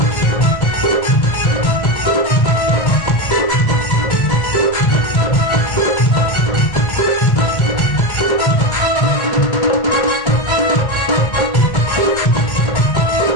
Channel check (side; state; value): right; late; 2.1 ms